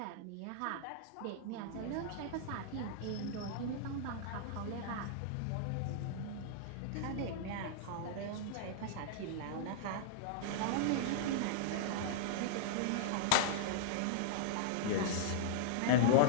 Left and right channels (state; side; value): different; both; correlation -0.01